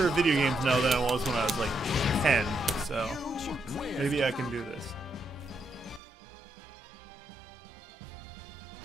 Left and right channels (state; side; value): drops out; left; at 6.0 s